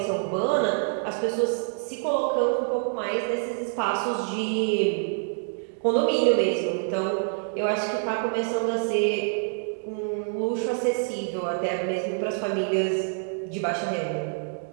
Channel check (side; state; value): left; silent; 61 dB below the other